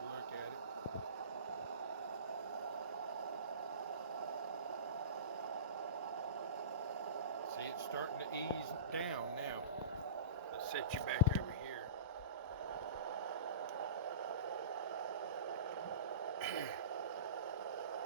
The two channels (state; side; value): inverted; both; correlation -0.33